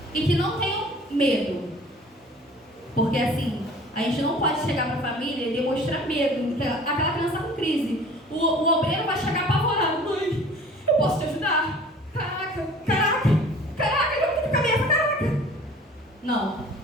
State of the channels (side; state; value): both; normal; correlation 0.47